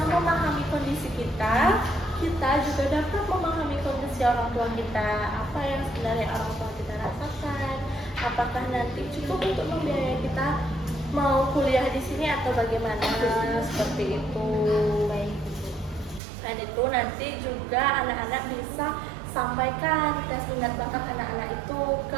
memahami kondisi kita juga dapat memahami kondisi orang tua kita. Apa yang sebenarnya orang tua kita rasakan? Apakah nanti cukup untuk membiayai kita mau kuliah di sini atau bagaimana? Seperti itu. Dan itu nanti juga anak-anak bisa sampaikan tes minat bakat anak-anak itu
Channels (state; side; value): drops out; left; at 16.2 s